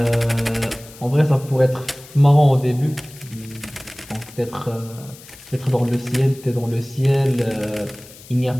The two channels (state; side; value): noise; left; hiss, 20 dB below the sound